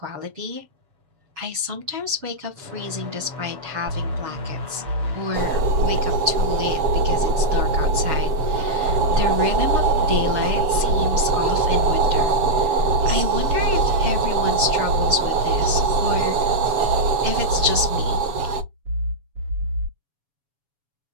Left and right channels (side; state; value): left; late; 7.1 ms